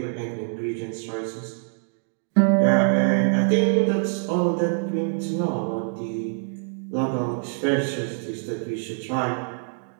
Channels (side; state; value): left; silent; 62 dB below the other